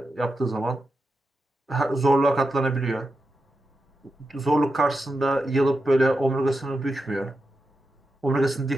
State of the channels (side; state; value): both; normal; correlation 0.88